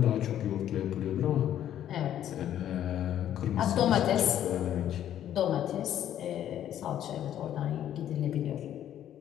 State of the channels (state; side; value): quieter; right; 11.0 dB